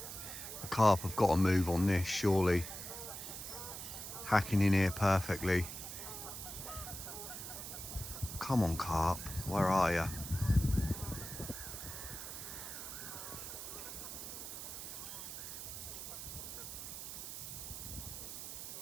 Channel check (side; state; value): right; noise; hiss, 8 dB below the sound